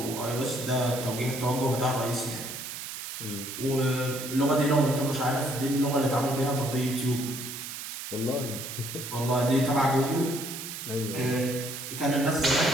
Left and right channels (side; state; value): right; noise; hiss, 8 dB below the sound